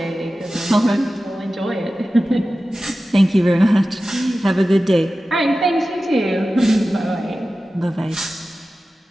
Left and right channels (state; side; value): normal; both; correlation 0.95